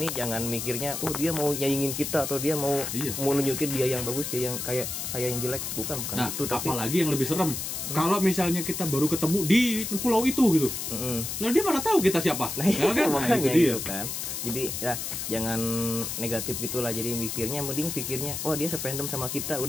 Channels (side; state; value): left; noise; hiss, 4 dB below the sound